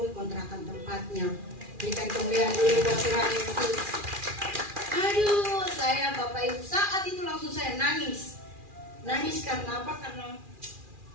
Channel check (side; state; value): left; late; 2.4 ms